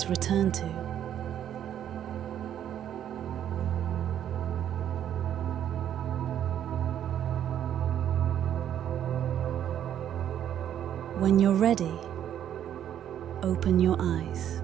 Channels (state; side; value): quieter; left; 10.2 dB